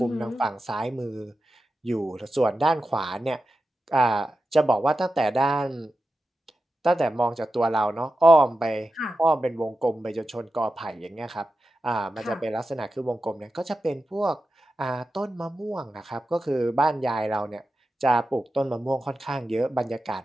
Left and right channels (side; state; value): both; normal; correlation 0.92